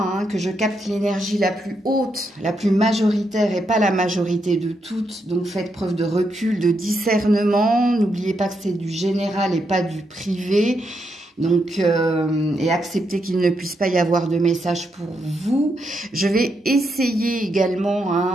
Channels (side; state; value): both; normal; correlation 0.81